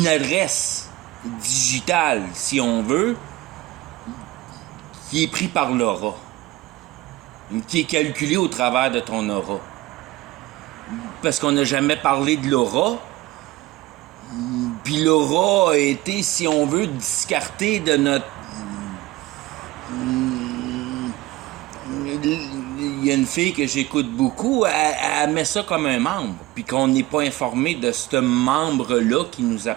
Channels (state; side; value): quieter; left; 18.1 dB